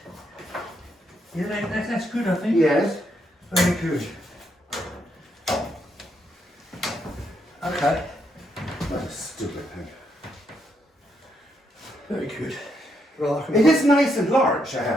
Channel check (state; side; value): normal; both; correlation 0.77